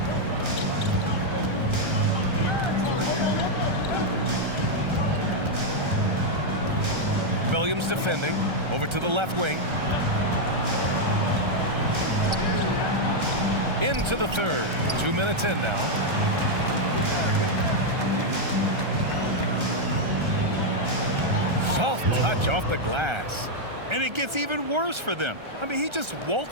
Williams defending, over to the left wing. Into the third. 2 minutes in now. Soft touch off the glass. And it gets even worse for them. I mean, he just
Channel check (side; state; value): left; late; 1.3 ms